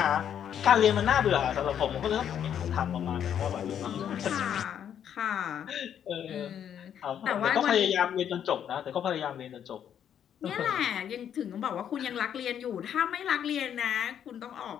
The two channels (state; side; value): quieter; right; 9.2 dB